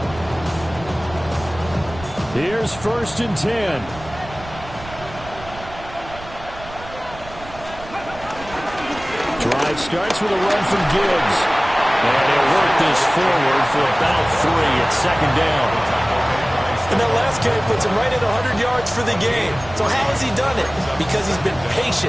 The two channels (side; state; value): right; noise; rumble, 16 dB below the sound